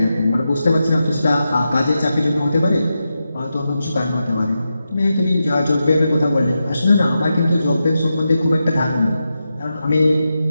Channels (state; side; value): inverted; both; correlation -0.89